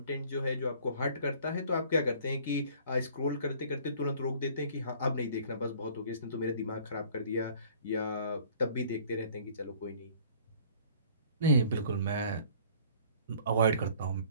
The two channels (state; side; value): inverted; both; correlation -0.53